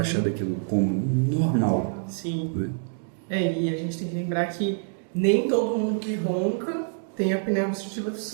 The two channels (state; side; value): silent; left; digital silence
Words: daquilo comum, normal. Sim. Né? E a gente tem que lembrar que nem todo mundo que ronca tem apneia obstrutiva do